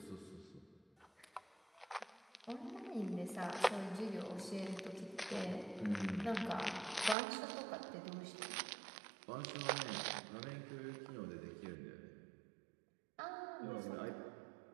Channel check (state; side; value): drops out; left; at 7.2 s